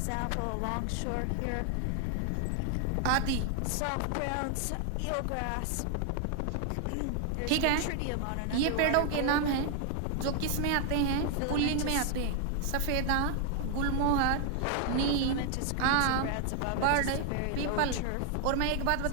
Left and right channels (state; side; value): different; both; correlation 0.00